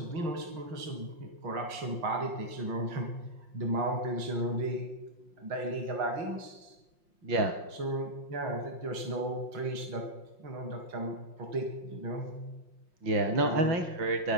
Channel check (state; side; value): late; left; 5.6 ms